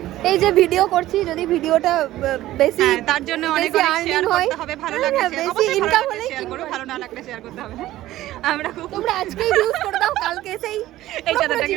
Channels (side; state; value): left; quieter; 15.1 dB